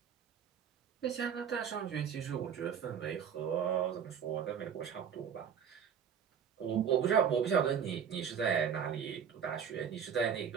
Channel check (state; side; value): quieter; left; 7.7 dB